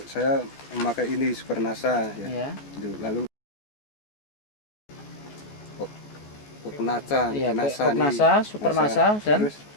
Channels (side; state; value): right; late; 14 ms